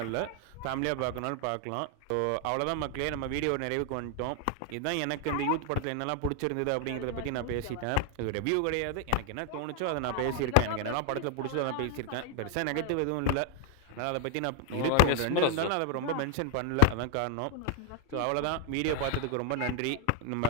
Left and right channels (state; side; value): different; both; correlation 0.00